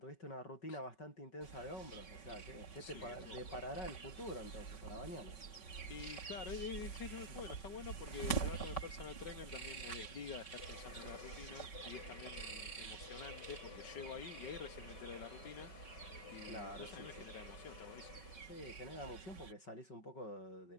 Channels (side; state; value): right; late; 5.3 ms